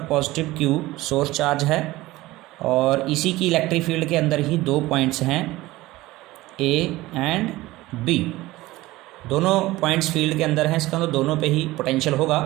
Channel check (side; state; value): left; quieter; 18.4 dB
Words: पॉजिटिव Q सोर्स चार्ज है, और इसी की इलेक्ट्रिक फील्ड के अंदर ही 2 पॉइंट्स हैं A एंड B। दोनों पॉइंट्स फील्ड के अंदर हैं, इसका मतलब दोनों पे ही पोटेंशियल होगा,